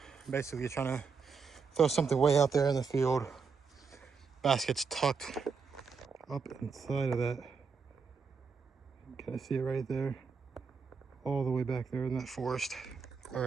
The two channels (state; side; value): quieter; left; 5.3 dB